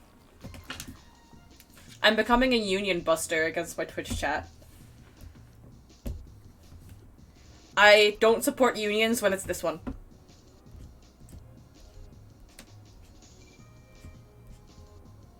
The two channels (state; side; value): identical; both; correlation 1.00